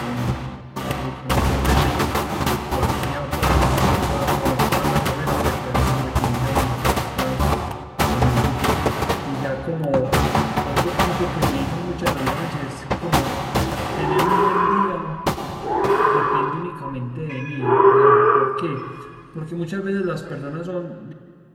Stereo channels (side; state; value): both; identical; correlation 1.00